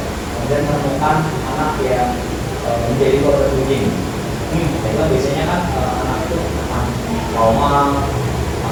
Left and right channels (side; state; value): both; identical; correlation 1.00